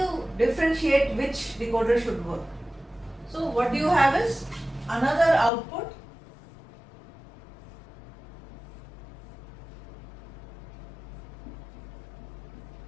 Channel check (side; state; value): right; drops out; at 5.5 s